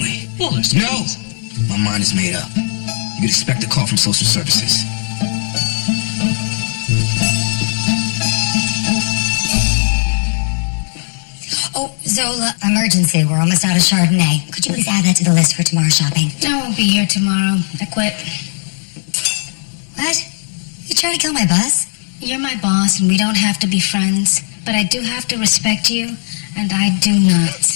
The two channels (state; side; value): silent; right; digital silence